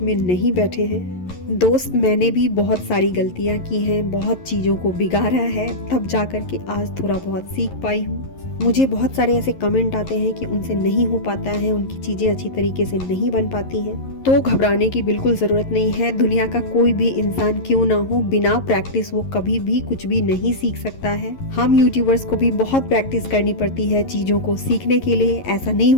नहीं बैठे हैं। दोस्त, मैंने भी बहुत सारी गलतियाँ की हैं, बहुत चीज़ों को बिगाड़ा है, तब जाकर के आज थोड़ा बहुत सीख पाई हूँ। मुझे बहुत सारे ऐसे कमेंट आते हैं कि उनसे नहीं हो पाता है, उनकी चीज़ें अच्छी तरीके से नहीं बन पाती हैं, तो घबराने की बिल्कुल ज़रूरत नहीं है। दुनिया का कोई भी इंसान क्यों ना हो, बिना प्रैक्टिस वो कभी भी कुछ भी नहीं सीख सकता है। हम यूट्यूबर्स को भी बहुत प्रैक्टिस करनी पड़ती है चीज़ों को सीखने के लिए। ऐसा नहीं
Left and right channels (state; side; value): late; right; 11 ms